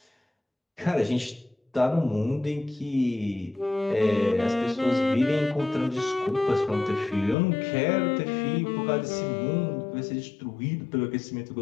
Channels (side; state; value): right; drops out; at 7.4 s